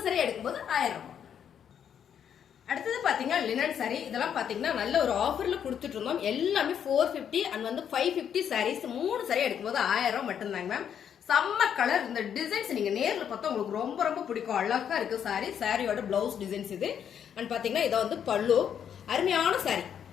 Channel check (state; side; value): quieter; right; 8.6 dB